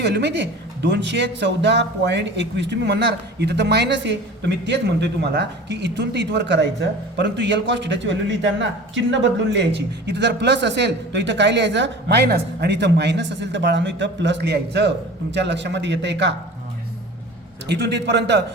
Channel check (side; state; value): both; normal; correlation 0.39